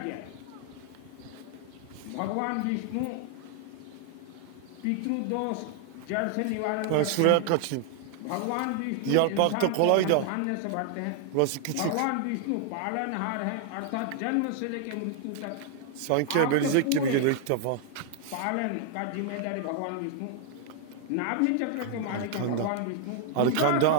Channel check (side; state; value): both; different; correlation 0.00